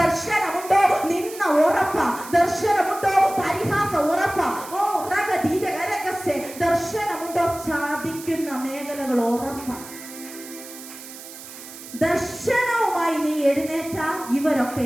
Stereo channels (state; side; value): noise; right; hiss, 14 dB below the sound